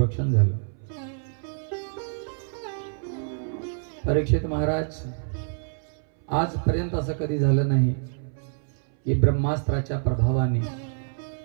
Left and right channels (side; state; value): left; silent; 60 dB below the other